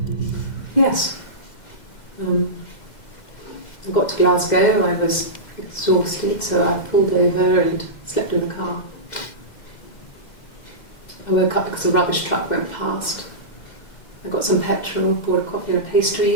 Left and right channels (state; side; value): late; right; 2.1 ms